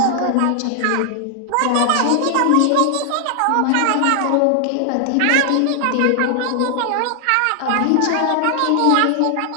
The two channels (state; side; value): different; both; correlation 0.00